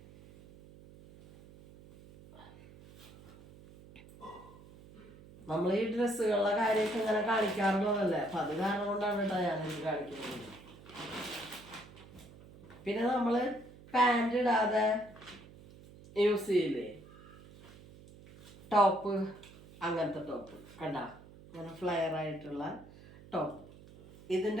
നമ്മൾ ഈ ഡ്രസ്സുകളുടെ കാര്യമൊക്കെ ഇങ്ങനെ കാണിക്കാറുള്ളതല്ലേ. അപ്പം അത് കാരണം കൊണ്ടാണ് കേട്ടോ ഞാനിത് കാണിക്കുന്നത്. പിന്നെ നമ്മൾ പാൻറ് ഇടാതെ യൂസ് ചെയ്യില്ലേ ടോപ്പ്, അങ്ങനത്തെ ടോപ്പ് കണ്ട, ഇങ്ങനെ ഫ്ലെയർ ആയിട്ടുള്ള ടോപ്പ്.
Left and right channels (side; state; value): right; noise; hum, 20 dB below the sound